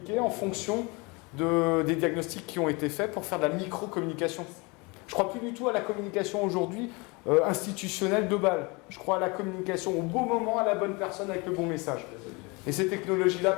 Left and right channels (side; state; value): right; quieter; 27.7 dB